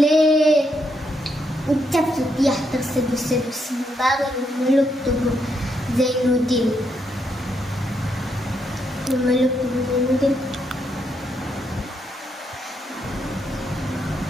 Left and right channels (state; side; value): normal; both; correlation 0.78